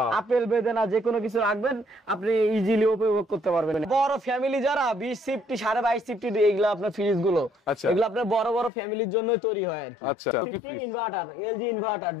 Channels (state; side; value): drops out; right; at 8.7 s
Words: আপেল বেদানা যে কোনো কিছু রাখবেন আপনি ইজিলি উপভোগ করতে পারবেন। বড় ফ্যামিলি যারা 20 সিফটি 22.5 সিফটি এগুলো আপনার ফ্রিজ গুলো এগুলো আপনার বড় বড় ফ্যামিলির জন্যই তৈরি হয় আর কি। আচ্ছা inverter LG inverter